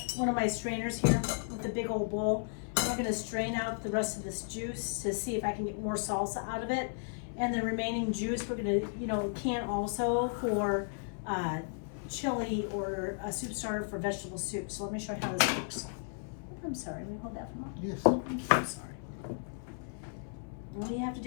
one of my strainers here with a big old bowl. And we're going to strain out the rest of this juice to see if I can get more salsa out of it. And the remaining juice we're going to, can also for chili or a soup starter for vegetable soup. So let me show you how this works. I'm sorry, will you hold that for a moment? Yes. Thank you, I'm sorry. All you have to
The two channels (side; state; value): right; silent; 55 dB below the other